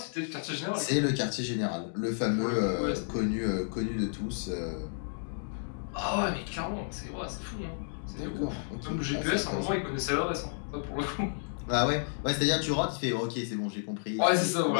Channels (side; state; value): right; silent; digital silence